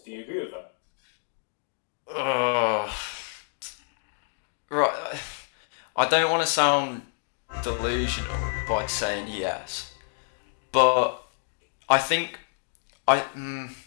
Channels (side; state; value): right; silent; digital silence